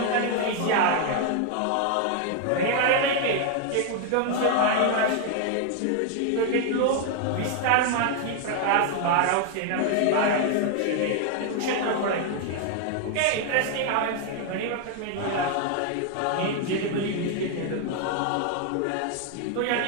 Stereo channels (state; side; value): different; both; correlation 0.00